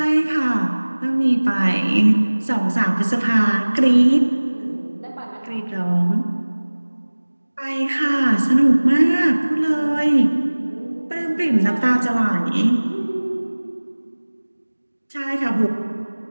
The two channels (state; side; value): inverted; both; correlation -1.00